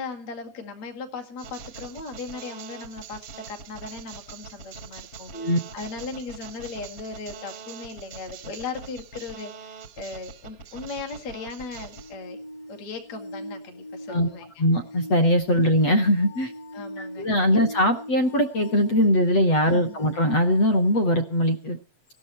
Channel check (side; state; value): right; late; 8.1 ms